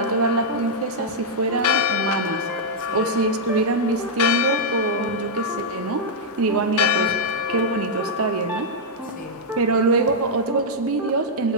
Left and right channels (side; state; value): both; normal; correlation -0.05